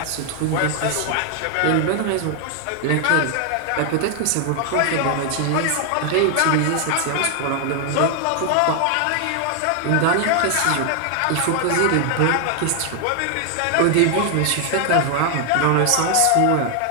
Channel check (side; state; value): both; different; correlation 0.00